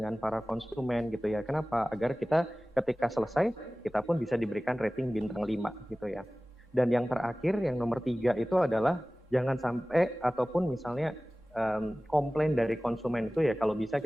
para konsumen gitu ya. Kenapa? Agar kita ketika selesai kita pun bisa diberikan rating bintang 5 gitu ya. Dan yang terakhir yang nomor 3 itu adalah jangan sampai ataupun misalnya komplain dari konsumen itu ya, kalau bisa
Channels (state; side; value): normal; both; correlation 0.97